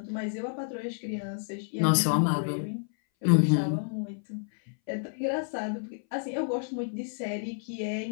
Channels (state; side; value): silent; right; 58 dB below the other